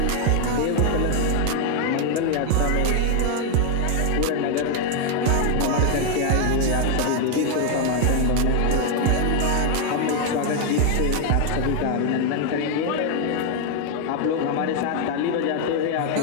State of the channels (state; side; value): different; both; correlation 0.00